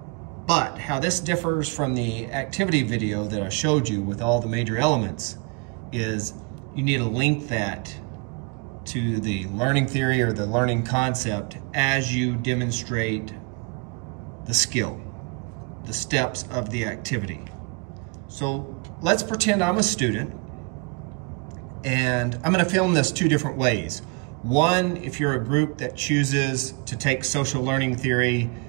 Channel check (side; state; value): left; quieter; 31.1 dB